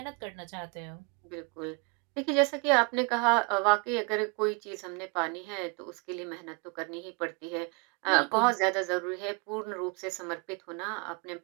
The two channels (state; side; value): quieter; left; 31.2 dB